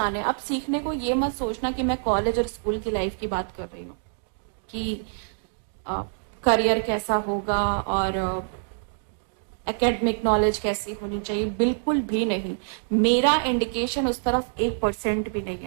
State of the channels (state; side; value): silent; left; digital silence